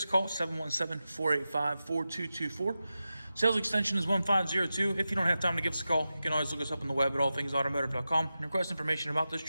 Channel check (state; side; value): inverted; both; correlation -0.93